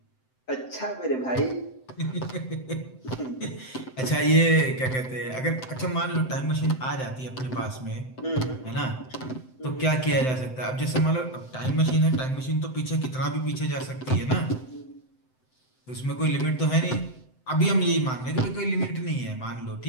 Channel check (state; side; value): late; right; 7.8 ms